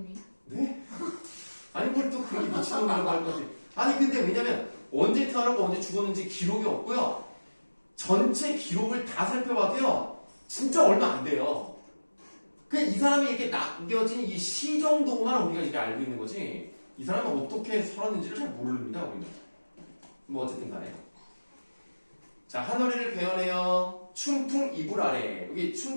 네? 아니 뭘 또 그렇게 미친놈이라고 할 거지. 아니 근데 왜냐면 언제 태어나고 언제 죽었는지 기록이 없고요. 전체 기록을 다 살펴봐도요. 진짜 얼마 안 돼요. 그냥 이 사람이 이렇게 남겨진 이 시 정도만 우리가 이렇게 알고 있는 거지. 이 사람이 어떻게 살았는지를 잘 모릅니다. 우리는. 뭐 어쨌든 간에. 자, 하늘이를 배워내요. 춘풍 이불 아래. 여기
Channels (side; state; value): both; inverted; correlation -1.00